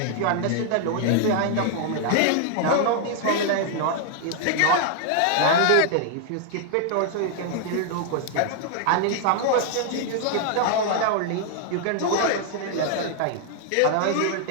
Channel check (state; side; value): different; both; correlation 0.00